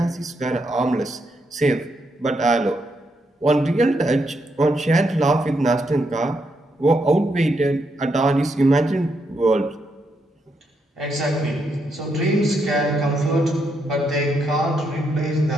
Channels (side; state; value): both; normal; correlation 0.79